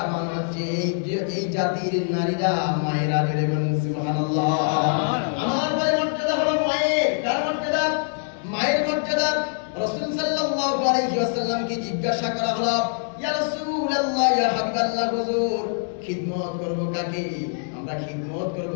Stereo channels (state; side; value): silent; right; digital silence